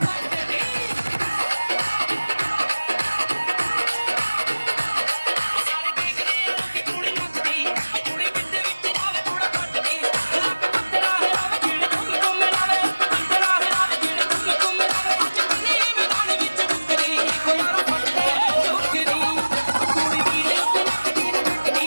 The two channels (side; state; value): both; inverted; correlation -1.00